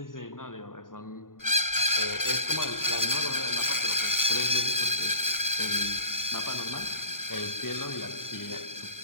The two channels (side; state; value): right; late; 0.90 ms